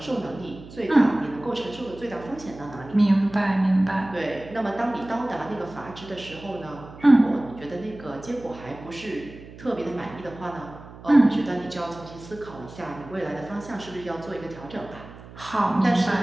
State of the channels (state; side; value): noise; right; hum, 17 dB below the sound